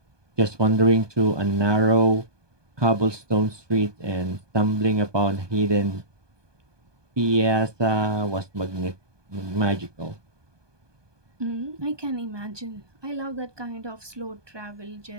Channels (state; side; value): late; left; 1.2 ms